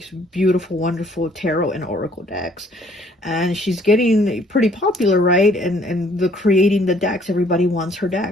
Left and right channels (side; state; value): both; normal; correlation 0.61